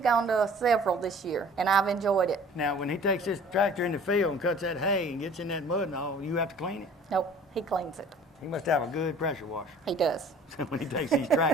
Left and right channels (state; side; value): normal; both; correlation 0.49